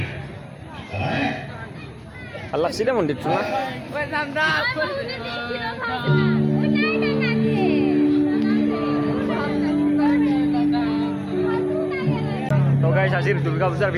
ভাল লাগছে দে মন্দিৰটো না তো গাইজ আজিৰ দুৰ্গা পূজাৰ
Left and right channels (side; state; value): both; identical; correlation 1.00